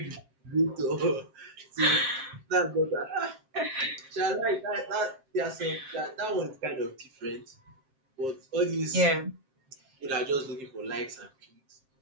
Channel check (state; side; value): late; left; 7.6 ms